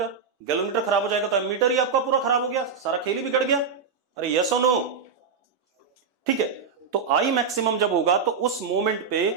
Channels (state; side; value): quieter; left; 5.6 dB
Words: गैलोमीटर खराब हो जाएगा तो एमीटर ही आपका पूरा खराब हो गया, सारा खेल ही बिगड़ गया। अरे यस और नो? ठीक है, तो आई मैक्सिमम जब होगा तो उस मोमेंट पे